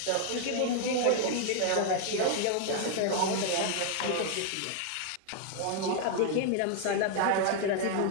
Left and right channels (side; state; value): both; different; correlation 0.00